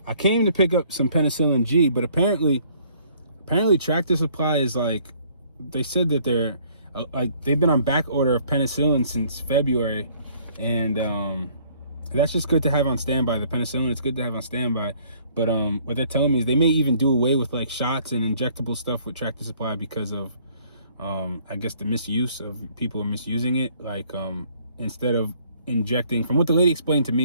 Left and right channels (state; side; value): inverted; both; correlation -0.60